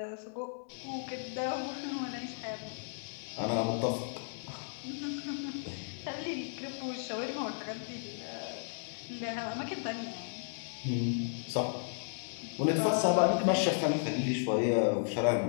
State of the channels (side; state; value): right; silent; digital silence